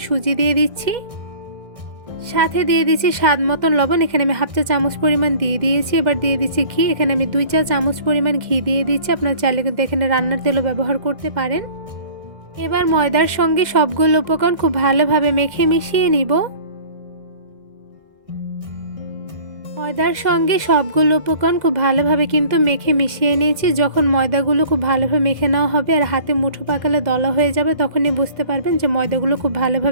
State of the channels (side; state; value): left; late; 2.0 ms